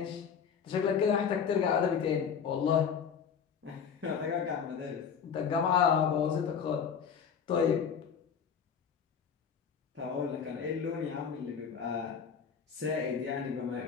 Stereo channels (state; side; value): quieter; right; 7.0 dB